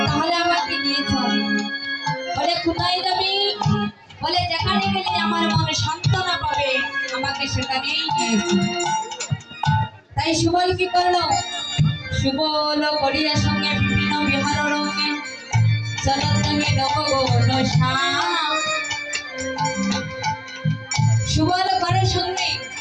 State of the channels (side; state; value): both; identical; correlation 1.00